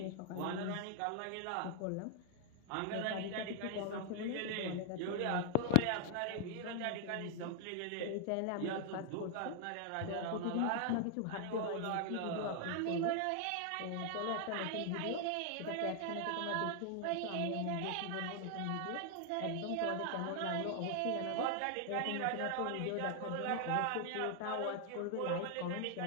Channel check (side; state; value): both; different; correlation 0.00